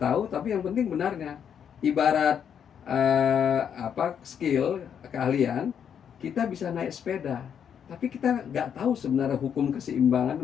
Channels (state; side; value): quieter; right; 8.2 dB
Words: tapi yang penting benarnya. Ibarat skill keahlian, kita bisa naik sepeda, tapi kita nggak tahu sebenarnya hukum keseimbangan